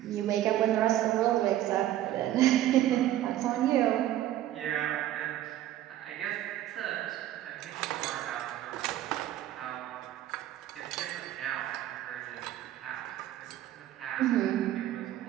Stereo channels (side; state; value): left; quieter; 13.1 dB